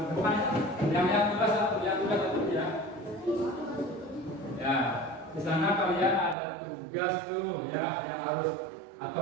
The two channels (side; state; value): left; drops out; at 6.4 s